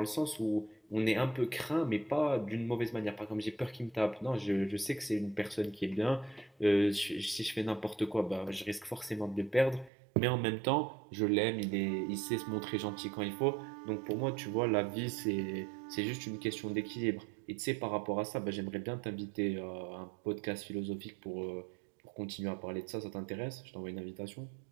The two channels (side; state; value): left; drops out; at 9.9 s